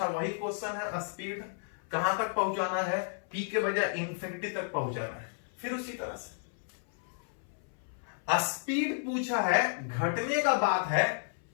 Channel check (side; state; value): right; silent; 56 dB below the other